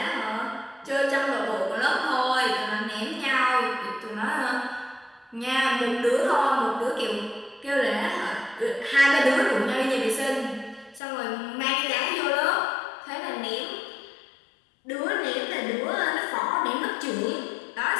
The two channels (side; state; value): right; drops out; at 11.0 s